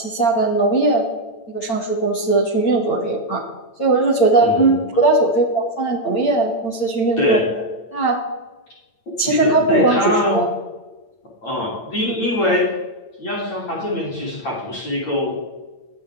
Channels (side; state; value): right; late; 8.8 ms